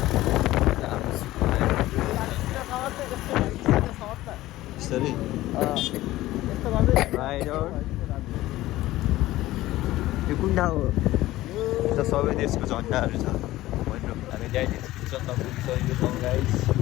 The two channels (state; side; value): quieter; right; 16.4 dB